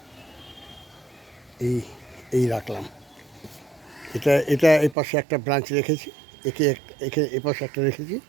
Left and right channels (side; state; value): left; drops out; at 5.0 s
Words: এই রাখলাম। এটা এই পাশে একটা ব্রাঞ্চ রেখেছি, একে এ পাশে একটা রেখেছি,